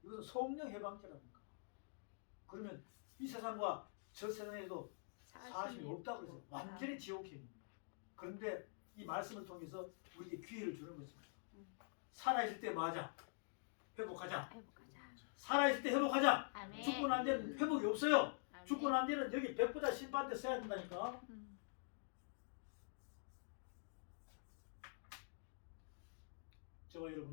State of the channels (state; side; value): silent; right; digital silence